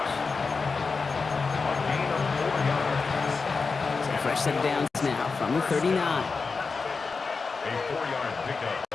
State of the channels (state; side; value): quieter; right; 4.6 dB